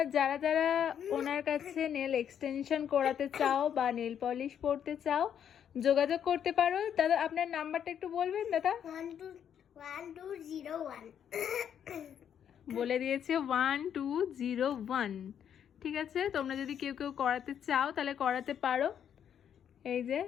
যারা যারা ওনার কাছে নেল এক্সটেনশন করাতে চাও বা নেল পলিশ পরতে চাও, যোগাযোগ করতে পারো। দাদা আপনার নাম্বারটা একটু বলবেন দাদা? 1201 বলে দিয়েছে 1201। ঠিক আছে, তোমরা যদি কেউ কেউ করাতে চাও তাহলে করাতে পারো। এই যে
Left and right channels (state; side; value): quieter; right; 8.9 dB